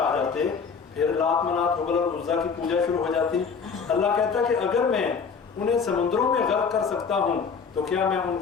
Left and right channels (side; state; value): right; quieter; 5.8 dB